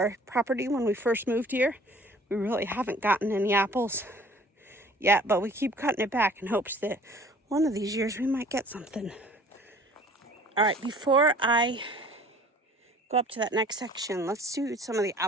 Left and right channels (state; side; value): normal; both; correlation 0.51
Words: property when we first moved here. We really haven't gotten any apples yet, but we keep cutting it back in hopes that one of these years we might get something. All right, before I go up to that next section, let's do some of the